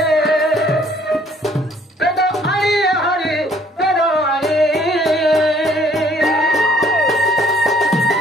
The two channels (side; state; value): both; normal; correlation 0.61